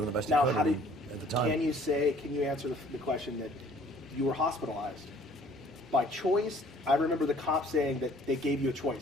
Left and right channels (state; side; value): normal; both; correlation 0.56